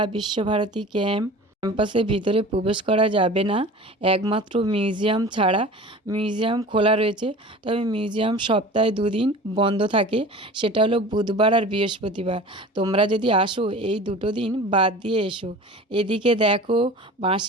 বিশ্বভারতী ক্যাম্পাসের ভিতরে প্রবেশ করা যাবে না, একমাত্র মিউজিয়াম ছাড়া। মিউজিয়াম খোলা রয়েছে, তবে মিউজিয়াম সপ্তাহে 2 দিন বন্ধ থাকে, সেটা হলো বুধবার আর বৃহস্পতিবার। তোমরা যদি আসো এই 2 দিন বাদ দিয়ে এসো। এদিকে দেখো,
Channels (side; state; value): both; normal; correlation 0.39